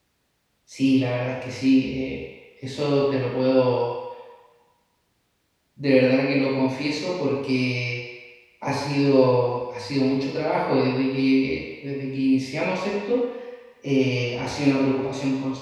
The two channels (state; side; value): identical; both; correlation 1.00